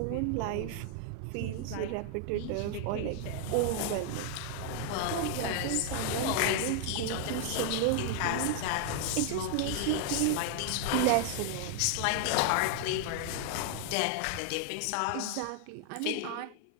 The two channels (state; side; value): different; both; correlation 0.00